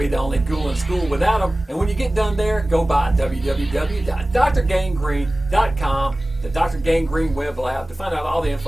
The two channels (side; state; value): both; normal; correlation 0.97